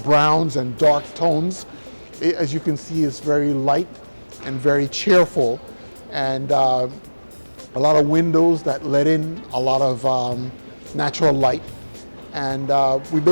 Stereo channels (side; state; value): both; inverted; correlation -1.00